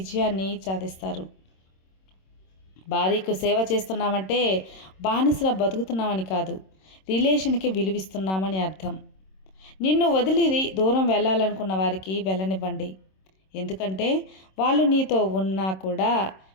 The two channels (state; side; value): late; right; 26 ms